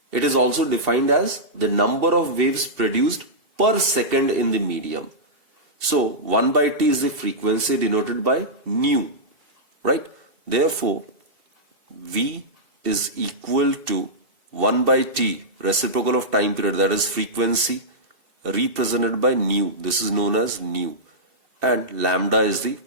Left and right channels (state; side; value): late; left; 2.7 ms